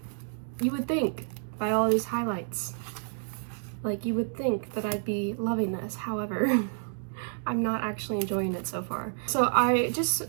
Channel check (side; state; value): left; silent; digital silence